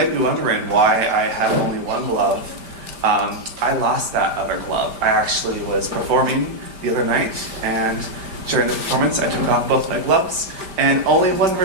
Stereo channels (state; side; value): late; left; 5.1 ms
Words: be wondering why I have only one glove. I lost that other glove. I actually was performing the other night, and during the performance I took off both my gloves, and only one